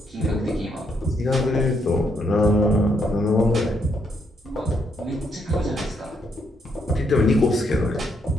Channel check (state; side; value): normal; both; correlation 0.75